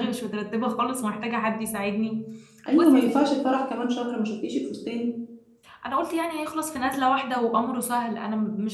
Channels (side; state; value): both; identical; correlation 1.00